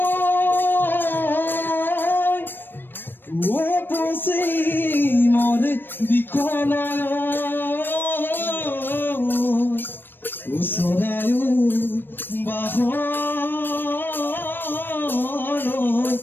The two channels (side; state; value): right; late; 0.096 ms